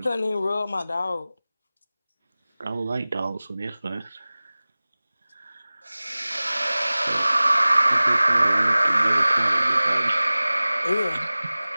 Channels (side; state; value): both; inverted; correlation -0.98